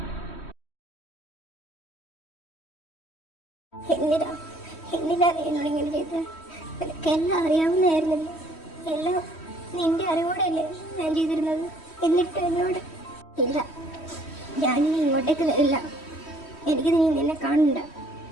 എന്തിനാ എന്നോട് ഇങ്ങനെ ചെയ്തത്? എനിക്കെല്ലാം അറിയാവുന്നതായിരുന്നില്ല. എല്ലാം നിന്റെ അറിവോടെയല്ലേ ഞാൻ ചെയ്തിരുന്നത്. എന്നിട്ട് എന്നോട് ഇല്ല, ഞാനിനി ഇങ്ങോട്ടേക്ക് വരില്ല. എനിക്ക് നീ നിന്നെ കാണണ്ട.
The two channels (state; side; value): late; right; 3.1 ms